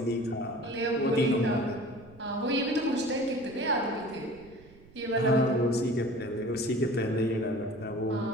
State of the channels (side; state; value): right; noise; rumble, 24 dB below the sound